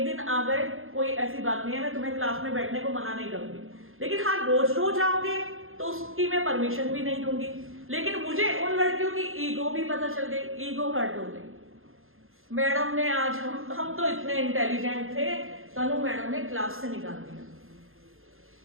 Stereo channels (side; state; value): left; late; 0.60 ms